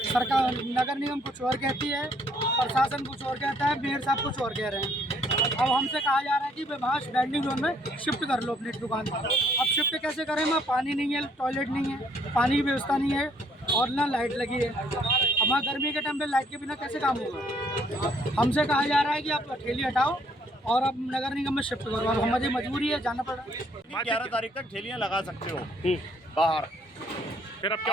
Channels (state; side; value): normal; both; correlation 0.65